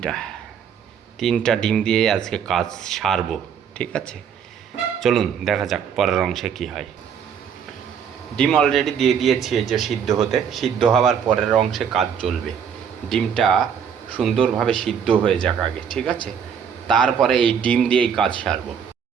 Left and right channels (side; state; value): left; quieter; 7.6 dB